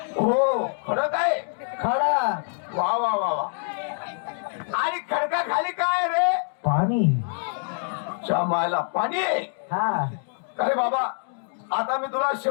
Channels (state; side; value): silent; right; 62 dB below the other